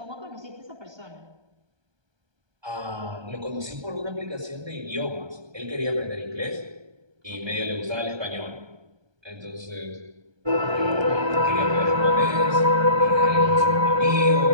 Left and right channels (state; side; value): late; left; 1.2 ms